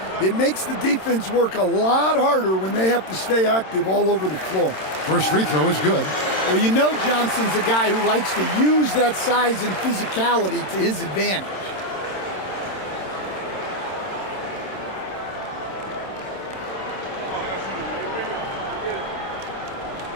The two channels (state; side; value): late; right; 27 ms